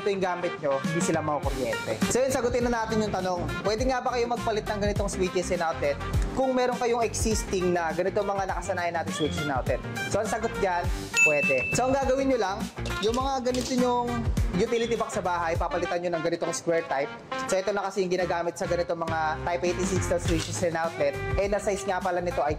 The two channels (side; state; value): both; identical; correlation 1.00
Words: yung gamit nyo, hindi sila makukuryente. So yun, sagutin na natin yung tanong, pwede nga ba kayo magpalit ng ganitong switches and outlet kung meron kayong existing na ganito mga nakasanayan natin switches and outlet? So ang sagot dyan, pwede. So ang gagawin nyo lang, yung mga ganito nyong utility box sa bahay, papalitan nyo ng ganitong square type. So ito na kasi yung ginagamit sa ganitong mga Type 86 na switches and outlet. And na size nga pala nito ay